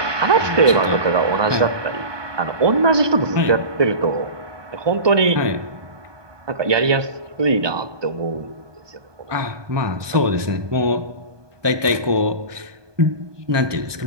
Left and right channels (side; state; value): left; late; 1.2 ms